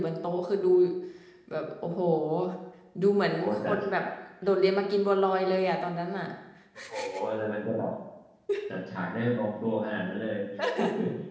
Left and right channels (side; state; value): both; identical; correlation 1.00